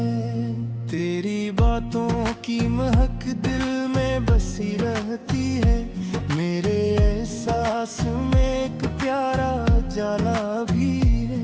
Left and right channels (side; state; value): both; identical; correlation 1.00